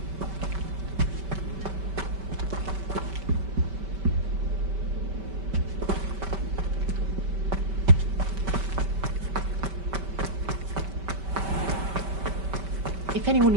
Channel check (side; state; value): left; late; 5.2 ms